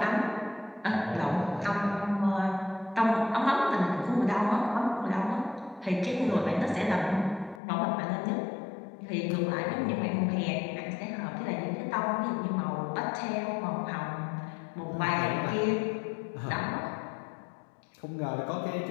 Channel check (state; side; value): drops out; right; at 7.6 s